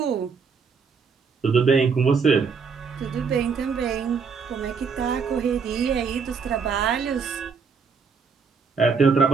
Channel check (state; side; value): quieter; left; 5.6 dB